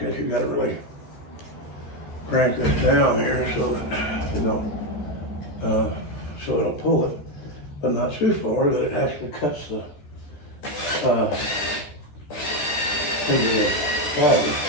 this, you gotta really crank this down here so that it don't pull it, but not too far that it actually cuts the into the body.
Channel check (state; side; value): late; right; 13 ms